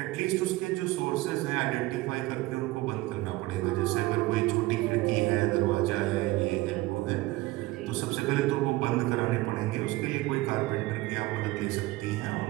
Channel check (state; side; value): quieter; left; 19.2 dB